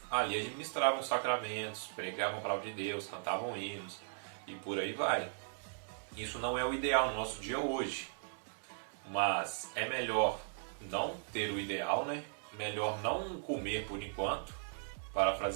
ali administravam os sacramentos, pregavam a palavra de Deus, cantavam hinos e por aí vai. Isso não é o ideal no nosso dia hoje, mas é melhor não ter o ideal, né? Melhor não comer por enquanto.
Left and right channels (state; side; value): silent; left; digital silence